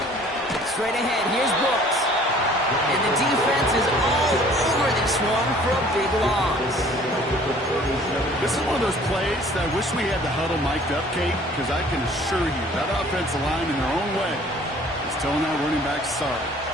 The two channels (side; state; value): both; normal; correlation 0.53